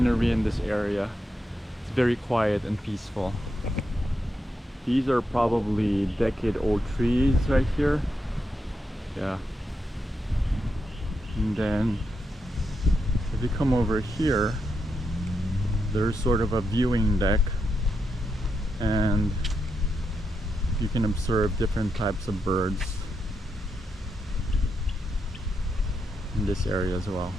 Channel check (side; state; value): both; normal; correlation 0.84